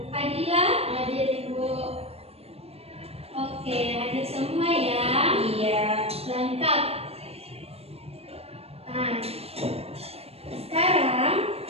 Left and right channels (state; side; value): late; left; 0.29 ms